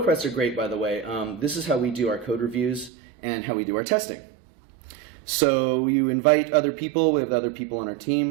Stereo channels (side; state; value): left; drops out; at 2.9 s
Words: are great, by the way. This is how we do our code reviews and how we do our testing. So you invite other people. We have other people on our